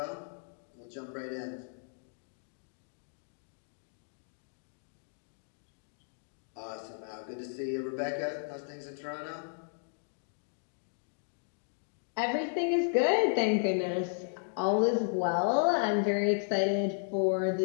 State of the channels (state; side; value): silent; right; digital silence